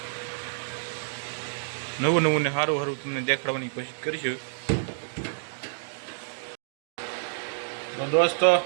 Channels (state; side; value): silent; left; digital silence